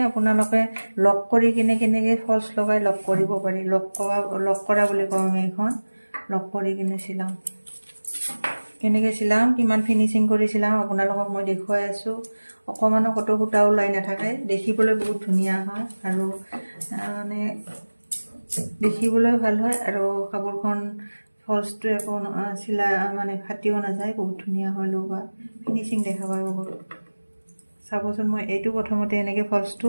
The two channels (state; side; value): inverted; both; correlation -1.00